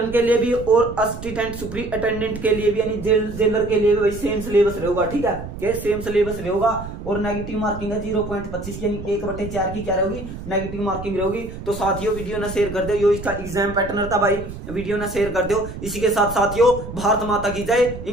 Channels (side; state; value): right; noise; rumble, 10 dB below the sound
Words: के लिए भी और असिस्टेंट सुपरिटेंडेंट के लिए भी यानी जेलर के लिए भी भाई सेम सिलेबस रहेगा, ठीक है, के सेम सिलेबस रहेगा। और नेगेटिव मार्किंग है 0.25 यानी 1/4 की क्या रहेगी नेगेटिव मार्किंग रहेगी। तो साथियों वीडियो ना शेयर कर दो, यो इसका एग्जाम पैटर्न था भाई, वीडियो ना शेयर कर दो। इसी के साथ साथियों भारत माता की जय,